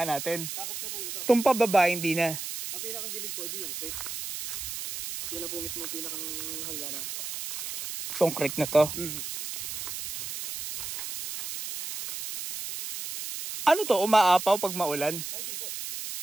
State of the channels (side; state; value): right; noise; hiss, 6 dB below the sound